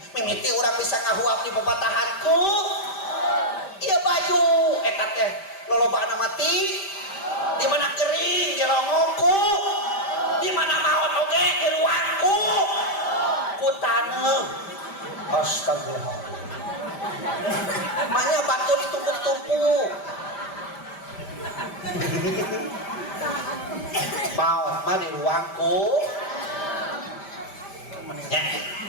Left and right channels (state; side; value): late; right; 5.1 ms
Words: mimiti orang bisa ngahuap di pepatahanku ieu baju eta teh lolobana mati di mana kering di longongku di mana maot oge di ruangku ku taneuh astagfirullah makanya batu ditumpuk-tumpuk maut mah di ruangku ya